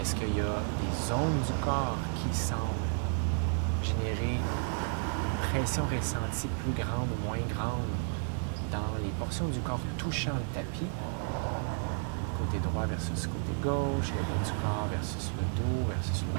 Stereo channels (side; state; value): left; silent; 56 dB below the other